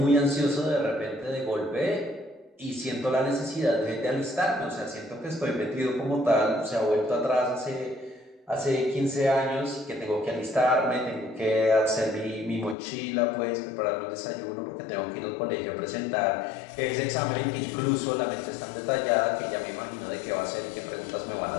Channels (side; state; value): right; drops out; at 12.8 s